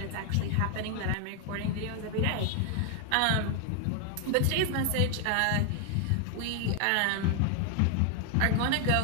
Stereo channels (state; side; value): different; both; correlation 0.00